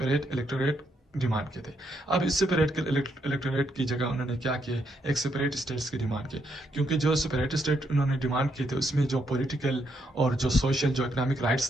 इलेक्टोरेट डिमांड किए थे। अब इस सेपरेट के इलेक्टोरेट की जगह उन्होंने क्या किए, एक सेपरेट स्टेट्स की डिमांड की, क्योंकि जो सेपरेट स्टेट उन्होंने डिमांड किए थे उसमें जो पॉलिटिकल और जो सोशल जो इकोनॉमिक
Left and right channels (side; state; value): both; normal; correlation 0.76